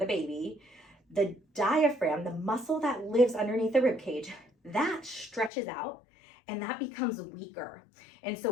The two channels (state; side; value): drops out; right; at 5.5 s